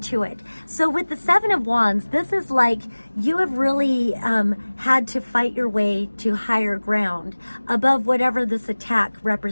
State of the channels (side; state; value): both; inverted; correlation -1.00